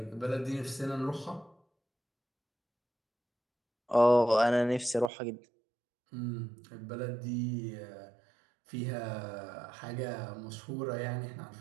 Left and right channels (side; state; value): left; drops out; at 5.1 s